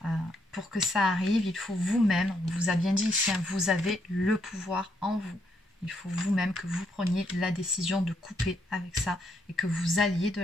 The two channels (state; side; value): normal; both; correlation 0.75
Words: pour que ça arrive, il faut vous-même, on vous a bien dit ici, hein, vous avez le pouvoir en vous. Il faut vous-même que vous preniez la décision de couper avec ça et que vous alliez de